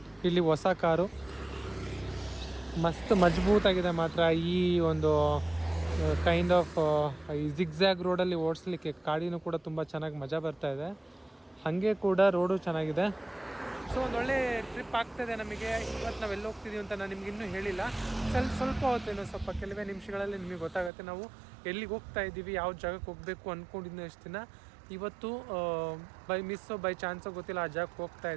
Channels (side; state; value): left; drops out; at 20.9 s